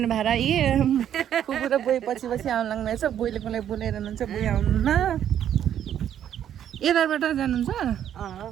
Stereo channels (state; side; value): quieter; left; 10.1 dB